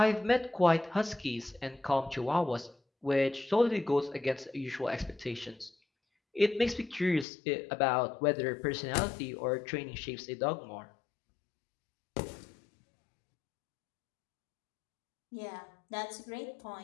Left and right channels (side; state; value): right; drops out; at 7.2 s